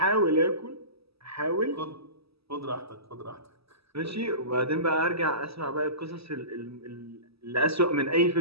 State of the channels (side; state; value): left; late; 0.77 ms